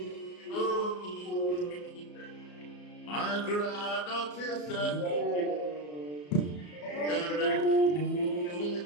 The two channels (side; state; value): right; late; 34 ms